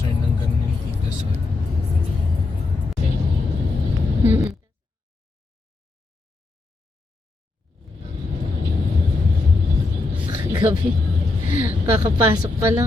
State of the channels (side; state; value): right; quieter; 3.3 dB